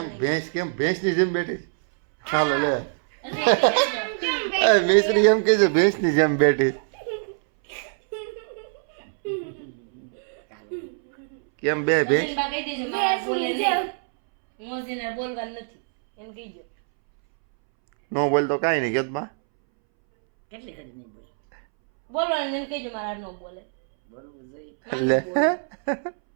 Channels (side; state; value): left; silent; 63 dB below the other